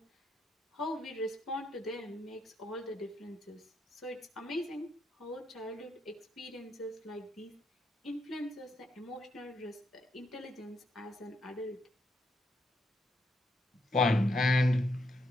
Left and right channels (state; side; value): normal; both; correlation 0.78